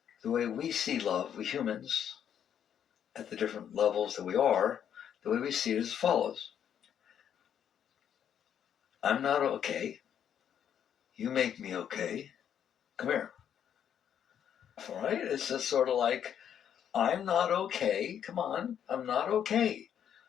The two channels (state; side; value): quieter; right; 9.1 dB